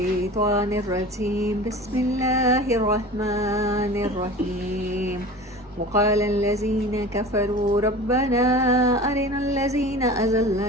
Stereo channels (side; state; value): both; normal; correlation 0.37